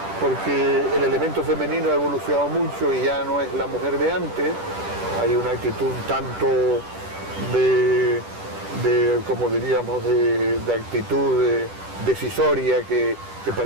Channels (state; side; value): late; left; 10 ms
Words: porque el elemento femenino ha evolucionado mucho y ya no es la mujer de antes. Hay una actitud tanto de como diríamos, de actitud decisoria que